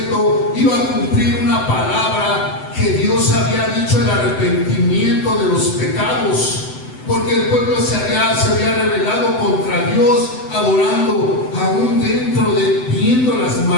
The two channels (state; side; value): late; right; 7.9 ms